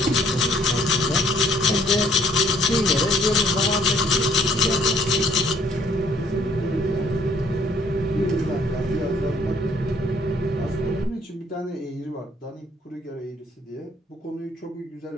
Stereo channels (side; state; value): both; normal; correlation 0.62